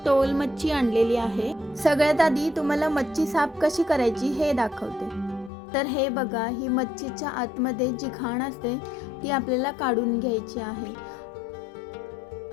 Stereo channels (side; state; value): right; drops out; at 5.5 s